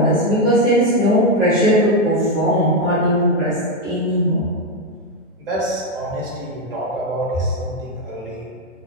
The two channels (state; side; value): normal; both; correlation 0.07